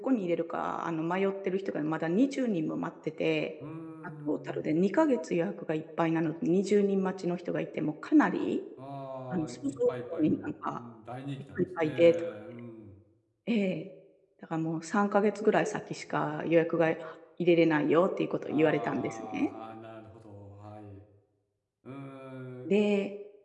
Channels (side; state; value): both; identical; correlation 1.00